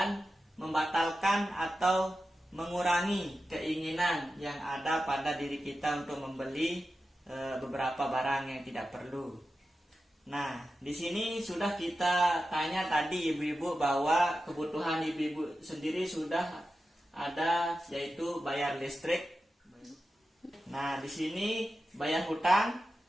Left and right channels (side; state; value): both; normal; correlation 0.92